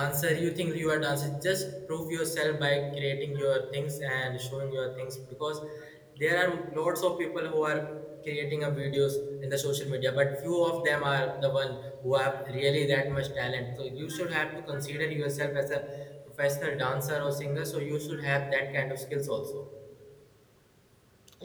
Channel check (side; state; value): both; identical; correlation 1.00